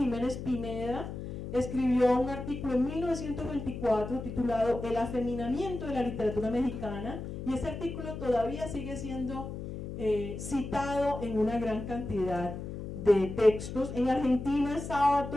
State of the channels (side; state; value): left; noise; hum, 8 dB below the sound